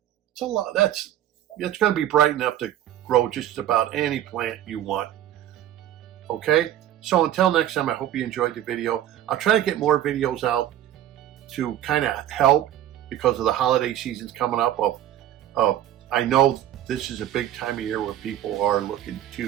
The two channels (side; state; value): left; quieter; 12.0 dB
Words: It's a lot. It's going to be bright enough to grow just about any plant you want. Okay, so until next time, I hope you enjoyed the video. I'll try to get more videos out to kind of help, because of the holiday seasons coming up. I know this is a big time of year where people are looking